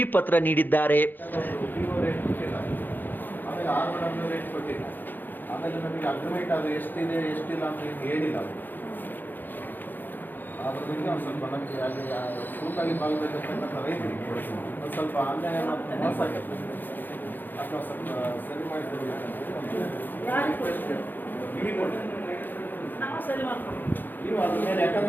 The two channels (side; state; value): right; late; 0.090 ms